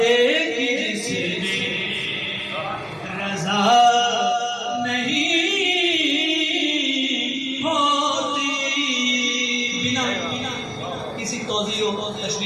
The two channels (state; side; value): identical; both; correlation 1.00